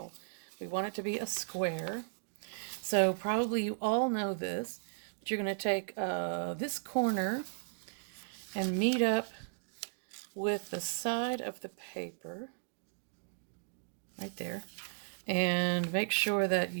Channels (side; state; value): left; silent; digital silence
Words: We want it to be a square. So probably you all know this, but you're going to take this corner and meet up with the side of the paper, right there, and make sure that